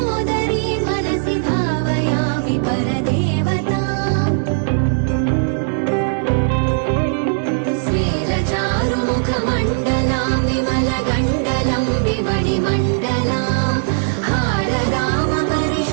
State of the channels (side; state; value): left; silent; 64 dB below the other